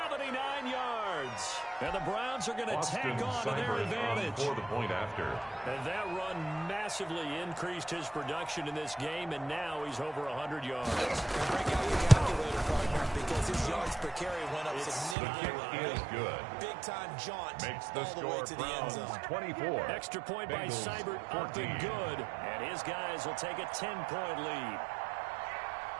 yards. And the Browns are going to tack on to their advantage. For the point after. And that run massively increased his production in this game, and now he's over 100 yards. Break out your calculator, partner, because his yards per carry went up The significantly. kick is good. Big-time jaunt Makes the all the way score to the end Browns zone. 24. Extra point by Bengals Seibert, up 14. and good. And his guys will take a 10-point lead.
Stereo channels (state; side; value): drops out; left; at 15.2 s